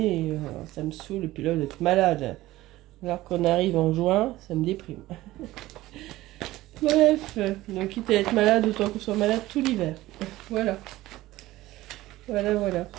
et, ça me saoule, et puis là d'être malade. Alors qu'on arrive en juin, ça me déprime. Bref, donc quitte à être malade, autant qu'on soit malade tout l'hiver. Voilà.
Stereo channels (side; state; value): left; quieter; 16.9 dB